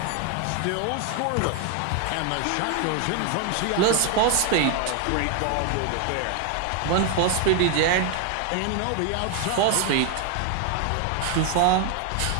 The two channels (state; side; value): different; both; correlation 0.01